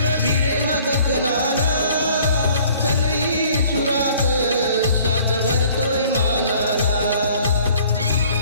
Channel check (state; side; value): inverted; both; correlation -0.55